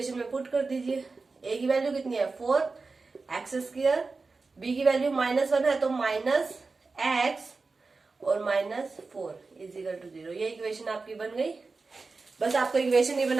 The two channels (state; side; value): quieter; left; 4.0 dB